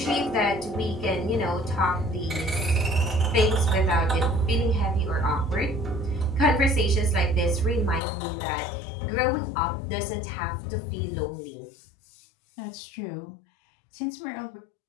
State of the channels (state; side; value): drops out; right; at 8.0 s